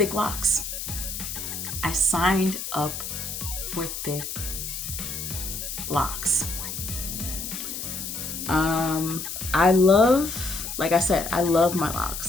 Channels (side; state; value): left; noise; hiss, 6 dB below the sound